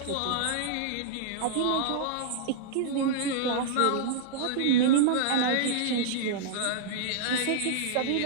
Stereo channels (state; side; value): different; both; correlation -0.02